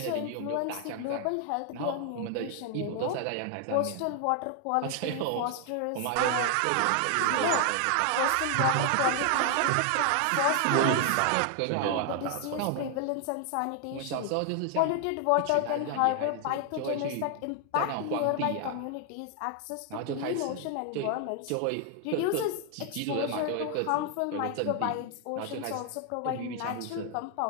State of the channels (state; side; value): different; both; correlation 0.00